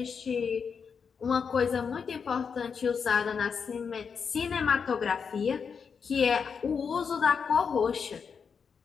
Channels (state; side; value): quieter; right; 6.2 dB